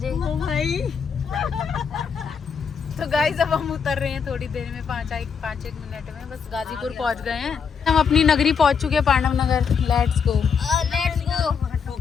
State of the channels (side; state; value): right; quieter; 6.4 dB